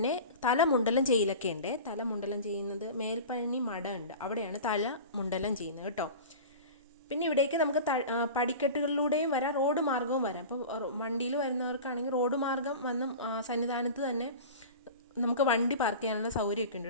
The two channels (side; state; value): both; inverted; correlation -0.34